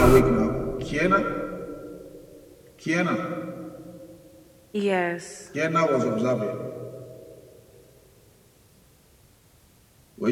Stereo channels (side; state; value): both; identical; correlation 1.00